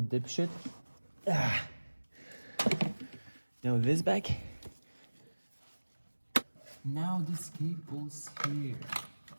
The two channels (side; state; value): both; inverted; correlation -1.00